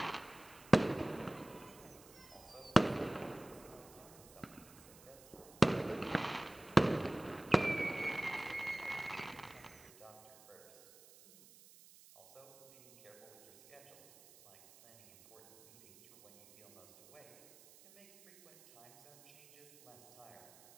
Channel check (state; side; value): noise; right; hiss, 23 dB below the sound